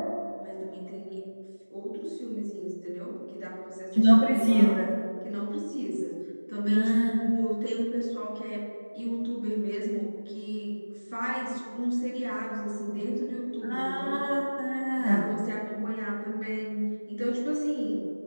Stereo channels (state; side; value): inverted; both; correlation -1.00